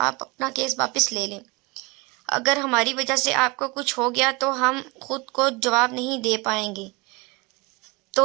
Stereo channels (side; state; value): left; quieter; 26.8 dB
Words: اپنا کیس واپس لے لیں، اگر ہماری وجہ سے آپ کو کچھ ہو گیا تو ہم خود کو جواب نہیں دے پائیں گے۔